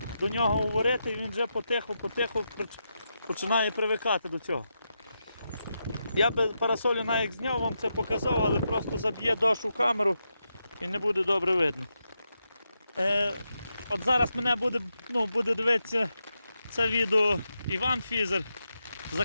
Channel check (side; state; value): both; inverted; correlation -0.86